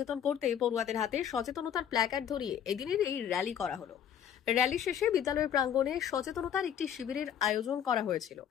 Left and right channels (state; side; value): quieter; right; 9.1 dB